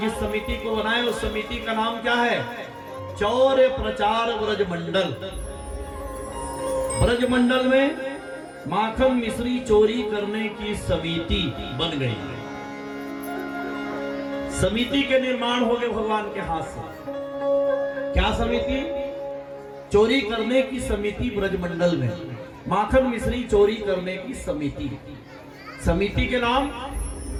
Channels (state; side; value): identical; both; correlation 1.00